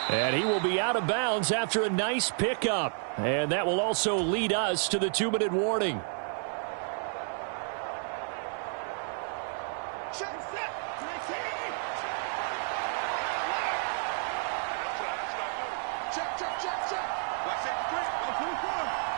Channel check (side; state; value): left; silent; 57 dB below the other